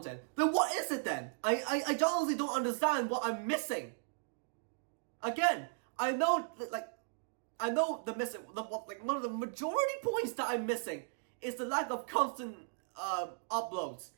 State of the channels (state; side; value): silent; left; digital silence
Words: then what is it then? I honestly don't understand what I'm missing. Again, I know the missing, one of the majority points that I'm missing is the lack of constant uploads,